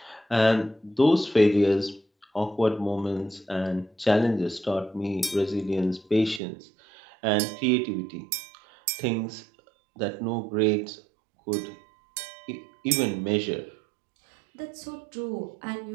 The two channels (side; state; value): left; drops out; at 6.4 s